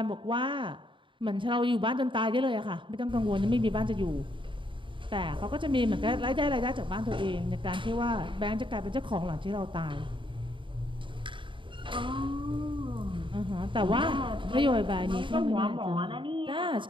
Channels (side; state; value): left; late; 0.24 ms